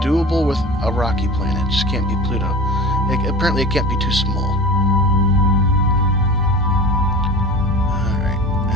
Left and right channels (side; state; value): both; normal; correlation 0.32